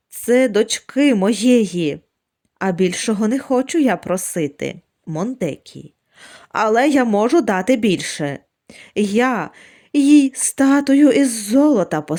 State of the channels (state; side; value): identical; both; correlation 1.00